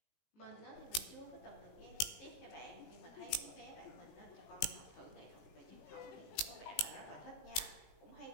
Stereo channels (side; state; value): right; late; 19 ms